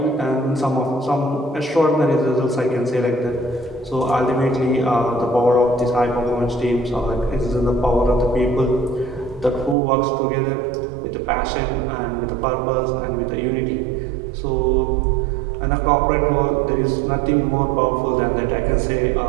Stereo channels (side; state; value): left; drops out; at 9.8 s